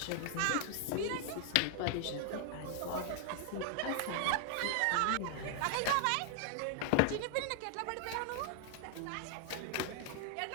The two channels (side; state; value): both; different; correlation 0.00